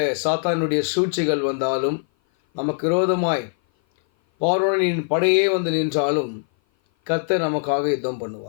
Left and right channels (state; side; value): silent; right; 57 dB below the other